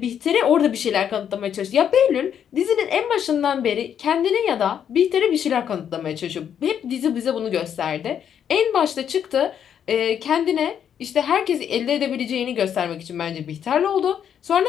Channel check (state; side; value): quieter; right; 8.8 dB